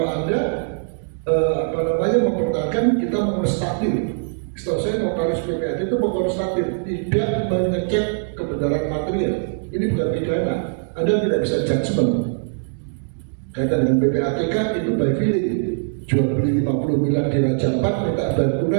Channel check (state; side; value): silent; left; digital silence